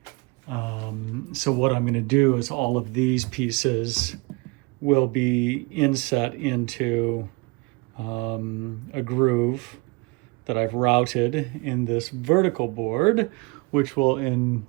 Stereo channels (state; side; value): quieter; left; 28.4 dB